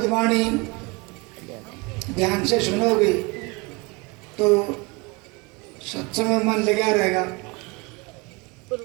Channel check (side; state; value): left; quieter; 26.5 dB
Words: वाणी ध्यान से सुनोगे तो सत्संग में मन लगा रहेगा,